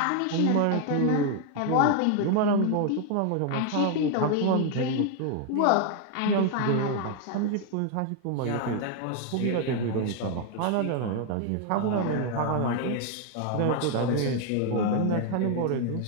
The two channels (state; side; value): different; both; correlation 0.01